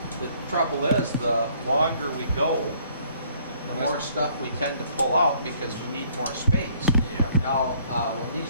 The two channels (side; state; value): both; inverted; correlation -0.62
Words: the trouble is, the longer we go, the more stuff we tend to pull out because we need more space. Yeah. Now, when